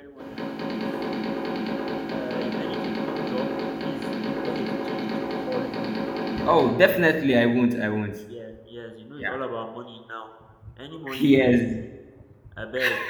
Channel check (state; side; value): identical; both; correlation 1.00